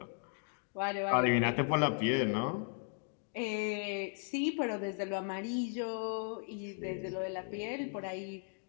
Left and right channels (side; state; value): right; silent; 54 dB below the other